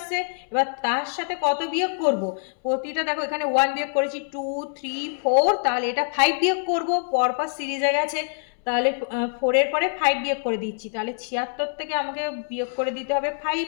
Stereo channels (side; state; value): right; silent; 62 dB below the other